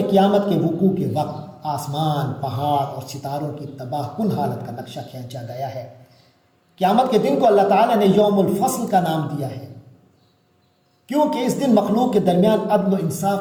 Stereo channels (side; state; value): both; identical; correlation 1.00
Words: قیامت کے وقوع کے وقت آسمان، پہاڑ اور ستاروں کی تباہ کن حالت کا نقشہ کھینچا گیا ہے۔ قیامت کے دن کو اللہ تعالیٰ نے یوم الفصل کا نام دیا ہے، کیونکہ اس دن مخلوق کے درمیان عدل و انصاف